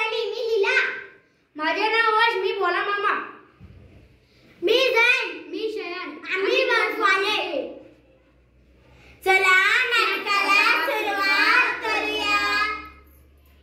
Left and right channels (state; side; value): identical; both; correlation 1.00